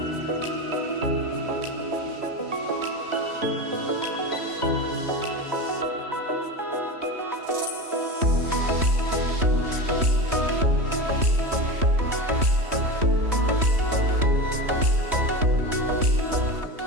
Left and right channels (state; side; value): late; left; 3.1 ms